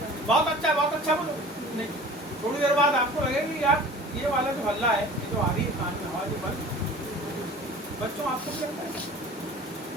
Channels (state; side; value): normal; both; correlation 0.43